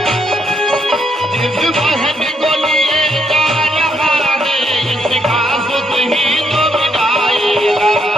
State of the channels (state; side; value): normal; both; correlation 0.75